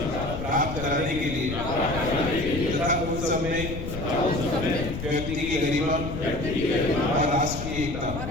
प्राप्त कराने के लिए तथा उस सब में व्यक्ति की गरिमा और राष्ट्र की एकता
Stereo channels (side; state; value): left; noise; rumble, 6 dB below the sound